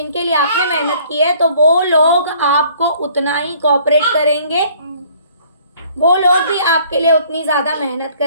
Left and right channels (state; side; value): inverted; both; correlation -0.57